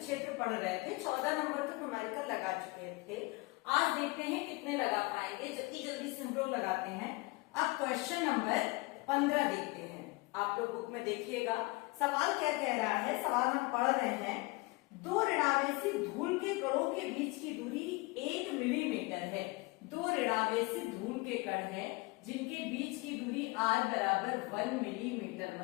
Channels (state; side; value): quieter; right; 24.4 dB